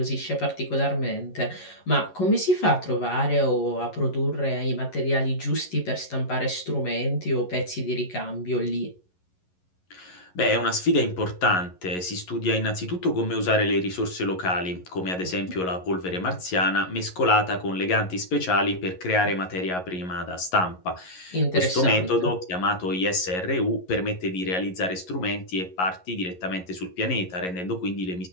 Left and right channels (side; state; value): right; late; 11 ms